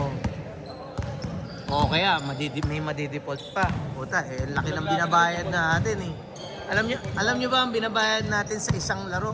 O kaya may madidefault pa. Puta, eh laki ng binabayad natin eh. Alam nyo ba ang binabayad natin sa isang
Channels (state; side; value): identical; both; correlation 1.00